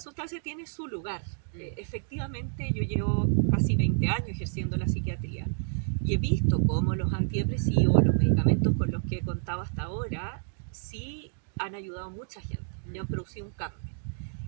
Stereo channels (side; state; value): left; silent; digital silence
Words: tiene su lugar. Efectivamente, yo llevo casi 20 años ejerciendo la psiquiatría y he visto cómo los antidepresivos, los medicamentos con los que he contado hasta ahora, sí han ayudado a mucha gente y han producido un cambio.